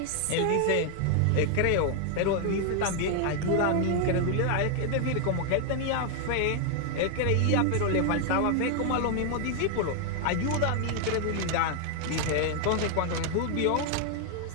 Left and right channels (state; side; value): different; both; correlation 0.00